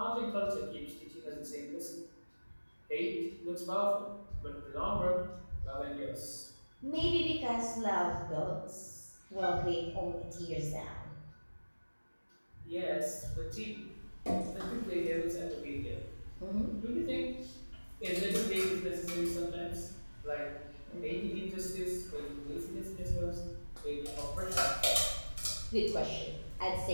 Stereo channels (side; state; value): both; inverted; correlation -1.00